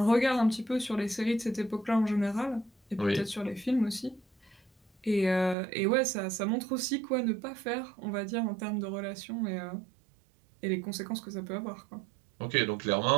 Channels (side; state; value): left; drops out; at 5.6 s